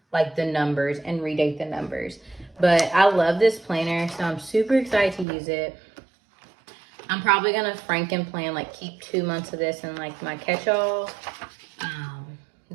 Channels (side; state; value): left; drops out; at 5.2 s